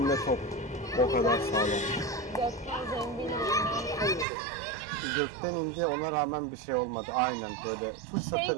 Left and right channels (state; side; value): drops out; left; at 4.2 s